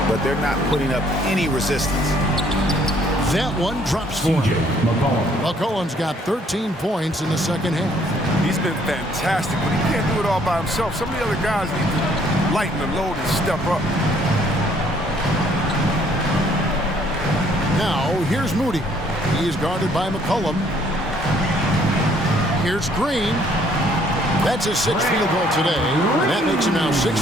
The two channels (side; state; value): both; normal; correlation 0.63